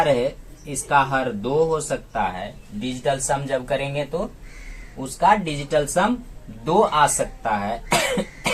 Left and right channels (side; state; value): both; identical; correlation 1.00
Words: रहे, इसका हर 2 हो सकता है। डिजिटल सम जब करेंगे तो उसका डिजिटल सम 2 आ सकता है।